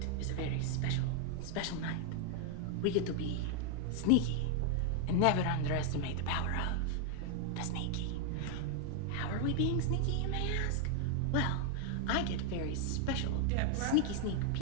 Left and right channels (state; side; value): different; both; correlation 0.00